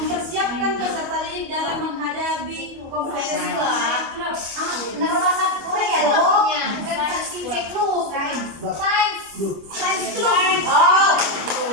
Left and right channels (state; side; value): late; left; 25 ms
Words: peserta didik dalam menghadapi kompetisi klub. Nama bahasa Korea dong. Bukan Sincek Club. Science Club. Oh.